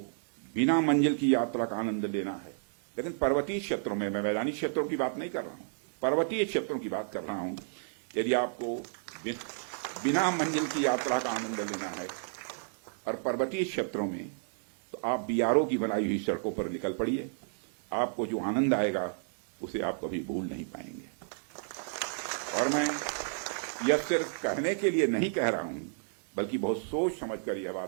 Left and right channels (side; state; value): left; silent; digital silence